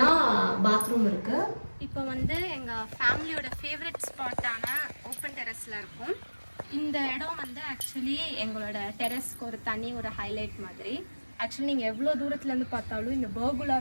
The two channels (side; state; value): both; inverted; correlation -1.00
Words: பாத்ரூம் இருக்கு. இப்போ வந்து எங்கள் ஃபேமிலியோட ஃபேவரட் ஸ்பாட்டான ஓப்பன் டெரஸில் இருக்கும். இந்த இடம் வந்து ஆக்சுவலி எங்களோட டெரஸ்க்கு ஒரு தனி ஒரு ஹைலைட் மாதிரி. ஆக்சுவலி நீங்கள் எவ்வளோ தூரத்துலேருந்து பார்த்தாலும் இந்த பர்குலா